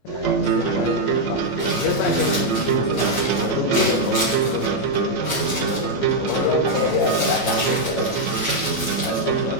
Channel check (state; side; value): late; right; 15 ms